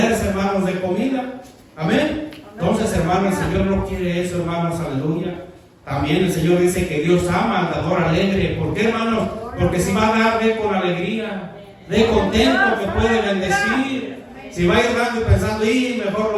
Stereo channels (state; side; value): identical; both; correlation 1.00